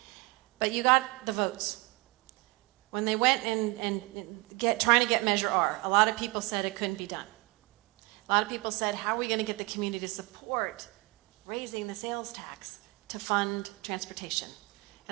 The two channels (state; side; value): quieter; left; 24.0 dB